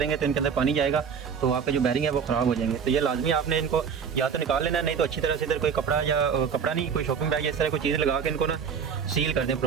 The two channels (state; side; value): quieter; left; 6.8 dB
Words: तो इनके अंदर पानी जाएगा तो आपका जो बैरिंग है वो ख़राब हो जाएंगे। तो ये लाजमी आपने इनको या तो निकाल लेना है, नहीं तो अच्छी तरह से इधर कोई कपड़ा या कपड़ा नहीं, कोई शॉपिंग बैग या इस तरह कोई चीज़ लगा के इनको ना सील कर दें